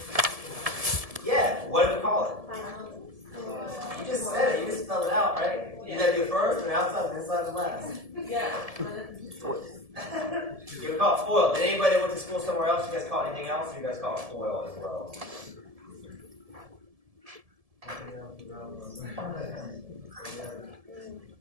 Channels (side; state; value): left; late; 1.7 ms